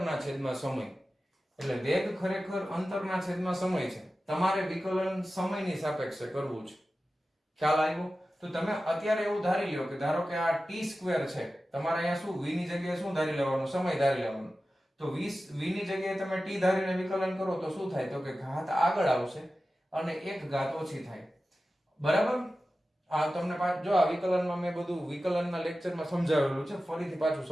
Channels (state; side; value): normal; both; correlation 0.94